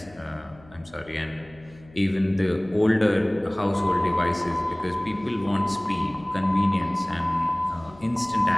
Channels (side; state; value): left; noise; hum, 24 dB below the sound